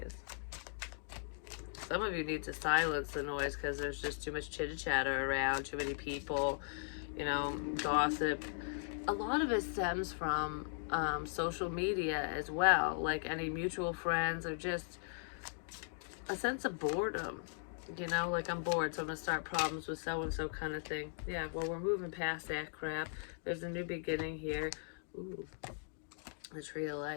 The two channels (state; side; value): silent; right; digital silence